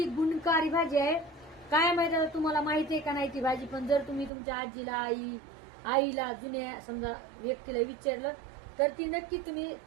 गुणकारी भाजी आहे. काय माहिती आता तुम्हाला माहिती आहे का नाही ती भाजी, पण जर तुम्ही तुमच्या आजीला आईला जुन्या समजा व्यक्तीला विचारलं तर ती नक्की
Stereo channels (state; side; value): drops out; left; at 4.3 s